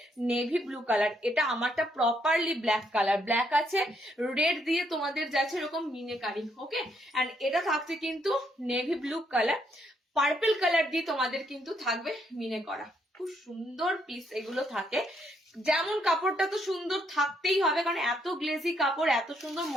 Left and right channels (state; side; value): normal; both; correlation 0.73